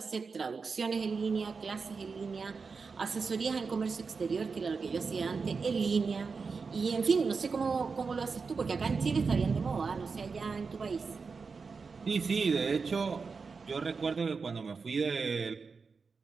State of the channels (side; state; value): left; quieter; 4.9 dB